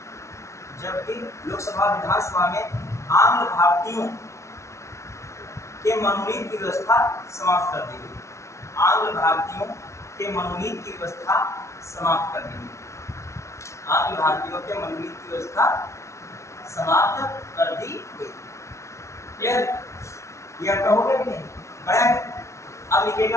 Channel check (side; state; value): right; late; 0.14 ms